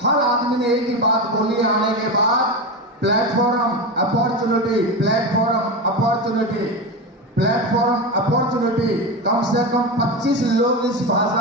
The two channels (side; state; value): both; normal; correlation 0.19